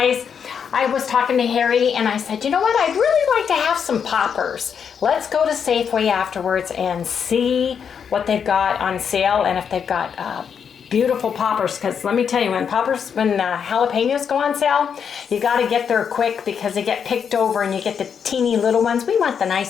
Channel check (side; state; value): right; quieter; 7.2 dB